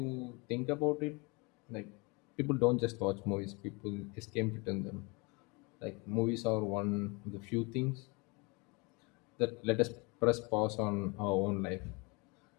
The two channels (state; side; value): quieter; right; 28.6 dB